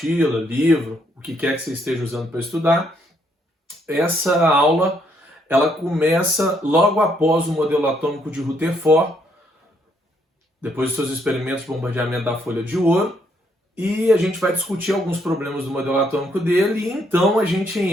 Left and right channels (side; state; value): both; normal; correlation 0.72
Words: livro, o que quer que você esteja usando para estudar, essa aula ela começa logo após o modelo atômico de Rutherford, depois dos seus experimentos de bombardeamento da folha de ouro, e a gente vai discutir alguns problemas do modelo atômico dele, e então a gente